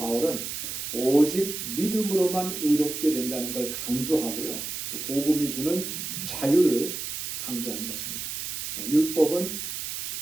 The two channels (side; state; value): right; noise; hiss, 5 dB below the sound